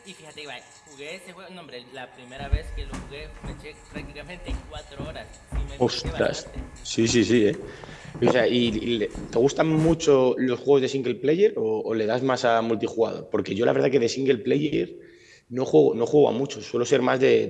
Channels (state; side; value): identical; both; correlation 1.00